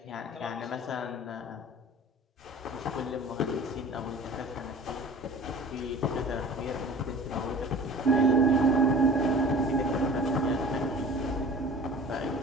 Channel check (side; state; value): both; normal; correlation 0.43